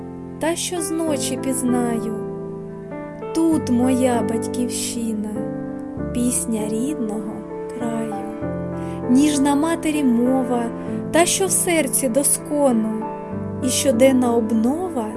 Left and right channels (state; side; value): identical; both; correlation 1.00